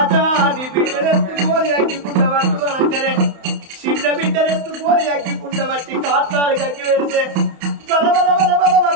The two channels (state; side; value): late; left; 31 ms